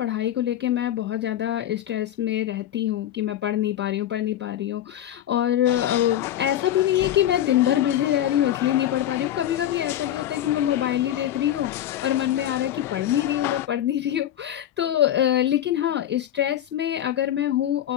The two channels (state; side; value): quieter; right; 11.8 dB